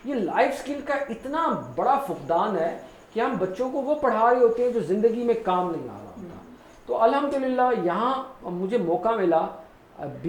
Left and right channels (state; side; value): identical; both; correlation 1.00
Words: ये लाइफ स्किल का इतना बड़ा फुकदान है कि हम बच्चों को वो पढ़ा रहे होते हैं जो ज़िंदगी में काम नहीं आ रहा होता। तो अल्हम्दुलिल्लाह यहाँ मुझे मौका मिला